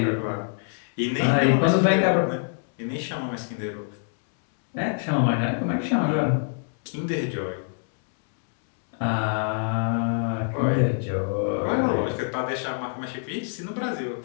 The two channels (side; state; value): right; silent; digital silence